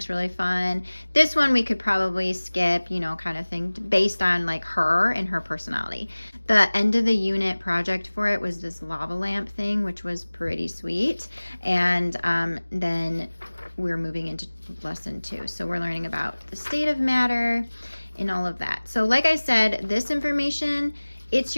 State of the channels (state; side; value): inverted; both; correlation -1.00